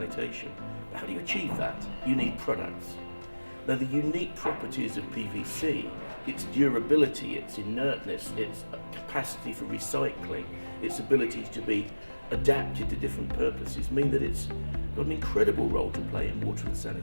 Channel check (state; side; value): inverted; both; correlation -1.00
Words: But how do you achieve that? You need products. Now, the unique properties of PVC, its durability, its inertness, its capacity for recycling, its ability to be adapted to different purposes, mean that it's got an incredible role to play in water and